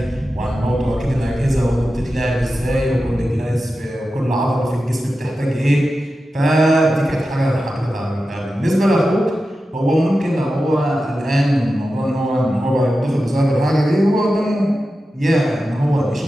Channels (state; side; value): normal; both; correlation 0.92